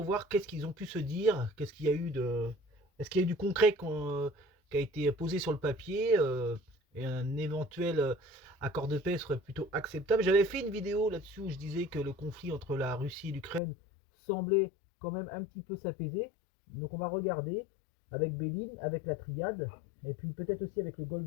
voir qu'est-ce qu'ils ont pu se dire, qu'est-ce qu'il y a eu de. Est-ce qu'il y a eu du concret qui a été posé sur le papier et un éventuel accord de paix serait plutôt acceptable. J'avais fait une vidéo là-dessus où je disais que le conflit entre la Russie et l'Ukraine semblait quand même un petit peu s'apaiser. Donc on va regarder avec Béline, avec la triade, et puis peut-être aussi avec le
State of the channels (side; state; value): right; drops out; at 13.6 s